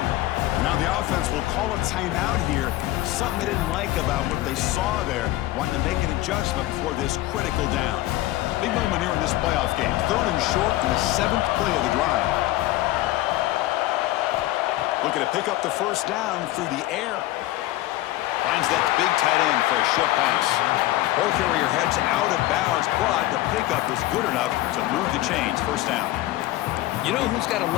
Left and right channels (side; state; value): right; quieter; 16.5 dB